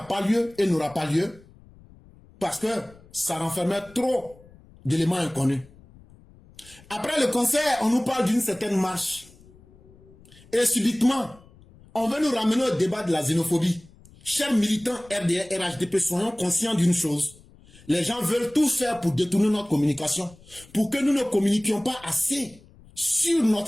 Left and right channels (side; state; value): left; noise; rumble, 25 dB below the sound